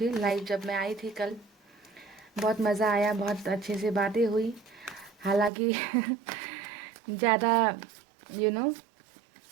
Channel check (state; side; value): drops out; left; at 5.5 s